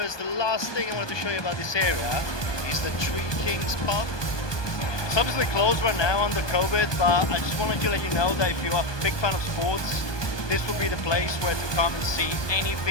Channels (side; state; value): right; late; 1.2 ms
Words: the last thing I wanted to show you about this area is the Three Kings pub. It's obviously closed right now under COVID, but I just wanted to let you know that if you're a big fan of sports, this will be the place where to come and see